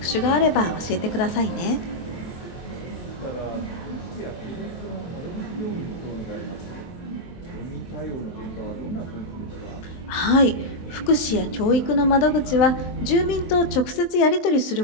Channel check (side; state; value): right; late; 23 ms